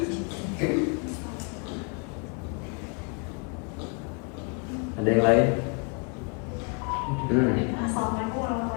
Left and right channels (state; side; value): quieter; right; 35.7 dB